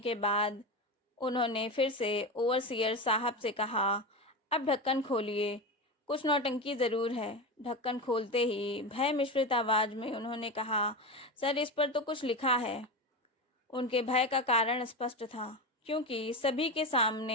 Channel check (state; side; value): normal; both; correlation 0.20